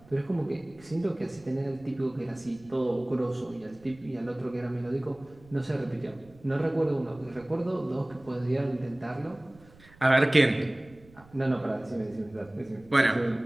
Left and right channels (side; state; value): right; noise; rumble, 25 dB below the sound